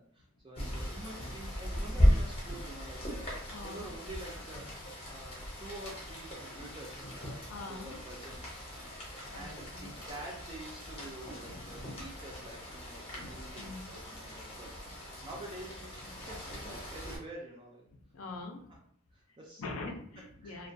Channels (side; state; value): both; normal; correlation 0.83